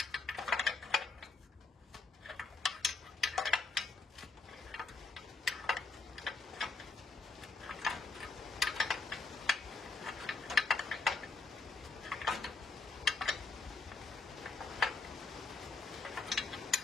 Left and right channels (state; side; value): quieter; right; 4.1 dB